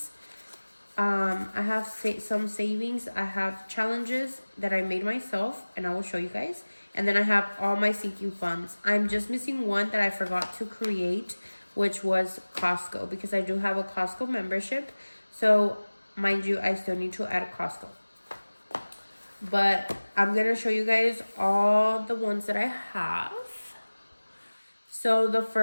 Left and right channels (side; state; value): both; inverted; correlation -1.00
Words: I have some savings. I have challenges that I made myself, and I will show you guys. And then I have all my sinking funds. I'm just missing one that I forgot to create, which was Costco, because I do have a Costco membership. So mind you, I still need to add Costco. But I'm going to show you guys all the ones that I have. So the